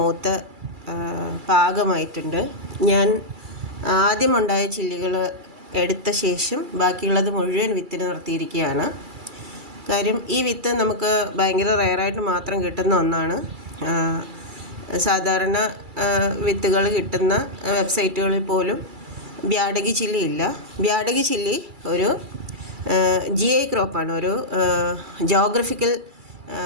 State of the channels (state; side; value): late; left; 2.3 ms